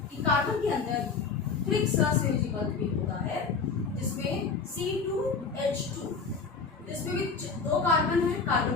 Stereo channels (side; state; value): right; quieter; 5.0 dB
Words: कि कार्बन के अंदर त्रिक सहसंयोजी बंध भी होता है, जिसमें C2H2, जिसमें भी 2 कार्बन है,